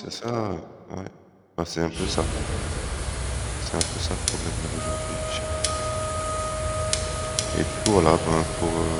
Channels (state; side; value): identical; both; correlation 1.00